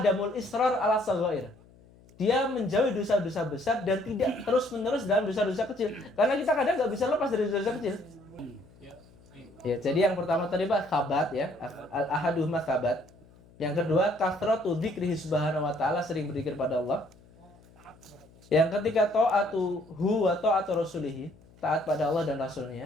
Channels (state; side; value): noise; left; hum, 26 dB below the sound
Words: israr ala saghair. Dia menjauhi dosa-dosa besar dan tidak terus-menerus dalam dosa-dosa kecil. Karena kita kadang nggak bisa lepas dari dosa-dosa kecil. Ya, jadi yang pertama tadi Pak, sabat ya. Al-ahaduhuma sabat. Yang kedua, kathratu dzikrihi subhanahu wa ta'ala, sering berzikir pada Allah. Yang ketiga, ta'atuhu wa ta'atu rasulihi, taat pada Allah dan